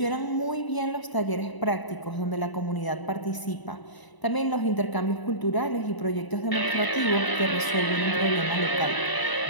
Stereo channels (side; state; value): right; late; 1.0 ms